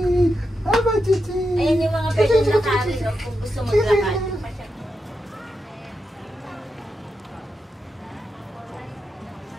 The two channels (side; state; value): both; normal; correlation 0.87